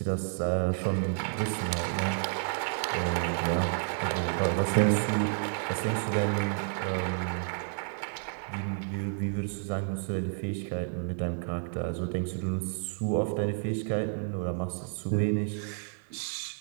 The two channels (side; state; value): left; silent; 57 dB below the other